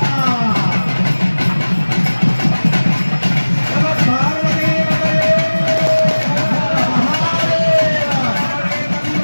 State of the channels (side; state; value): both; inverted; correlation -1.00